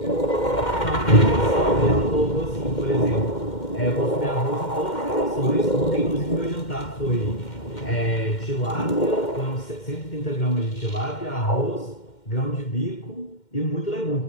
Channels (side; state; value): right; late; 2.1 ms